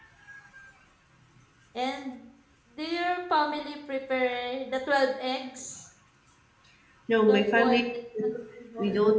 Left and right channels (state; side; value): identical; both; correlation 1.00